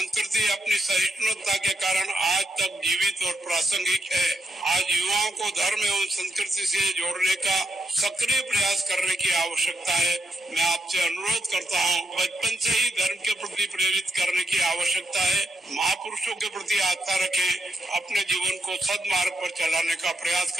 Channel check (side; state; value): both; normal; correlation 0.79